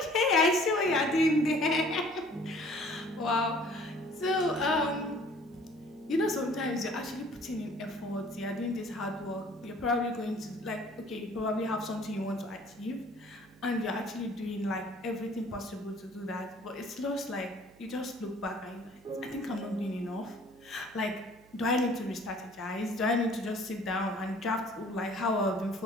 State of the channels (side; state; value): right; noise; hum, 25 dB below the sound